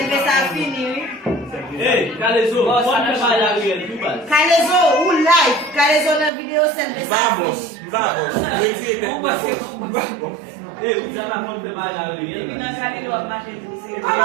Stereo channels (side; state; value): left; drops out; at 6.3 s